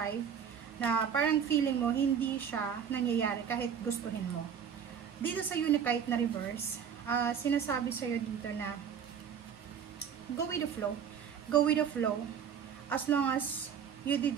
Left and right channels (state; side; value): quieter; left; 7.8 dB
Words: na parang feeling mo, hindi siya nangyayari kahit gustuhin mo. Dito sa Unakite na reverse, sinasabi sa'yo dito na go with the flow. Go with the flow. As long as you did